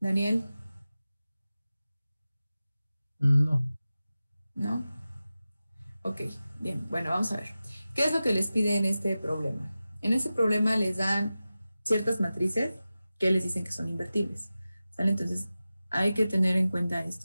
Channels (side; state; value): both; inverted; correlation -0.95